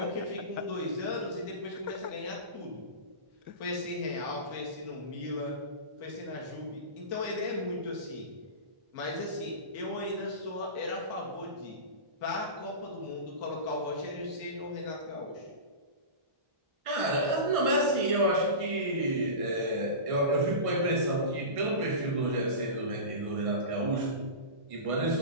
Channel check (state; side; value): late; left; 1.6 ms